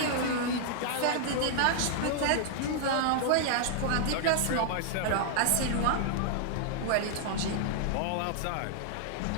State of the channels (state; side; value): different; both; correlation -0.01